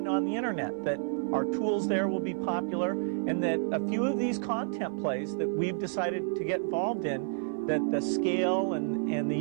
on the internet, that our tools there will be popular, and that a few of these content plays that we've decided to get involved in, that the scale and the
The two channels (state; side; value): silent; left; 58 dB below the other